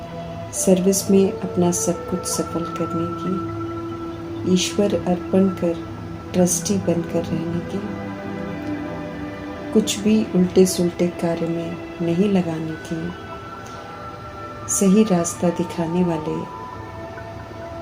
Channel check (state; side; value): identical; both; correlation 1.00